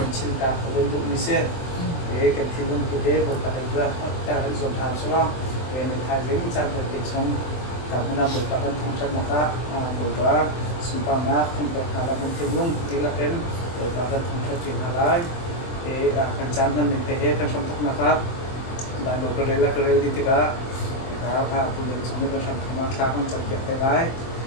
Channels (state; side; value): late; right; 23 ms